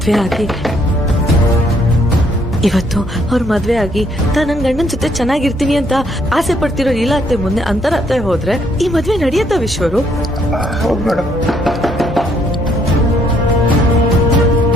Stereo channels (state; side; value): normal; both; correlation 0.69